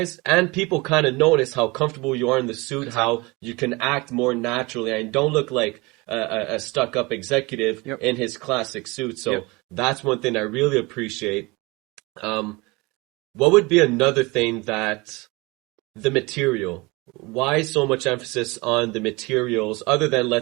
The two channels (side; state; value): left; quieter; 24.6 dB